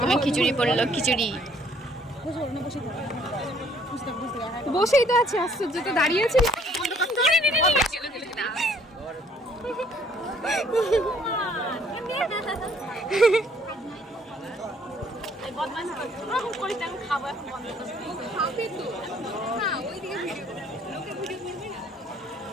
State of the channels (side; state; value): both; normal; correlation 0.62